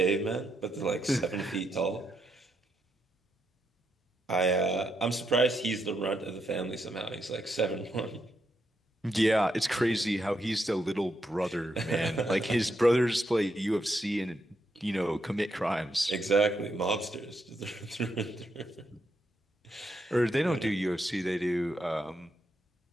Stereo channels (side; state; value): both; normal; correlation 0.81